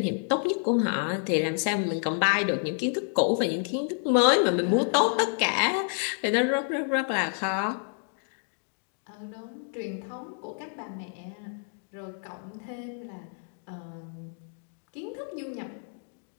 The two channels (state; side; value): silent; right; 59 dB below the other